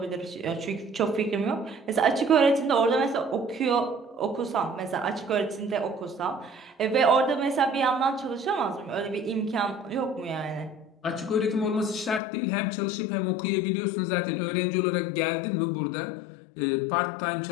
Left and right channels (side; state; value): right; drops out; at 12.2 s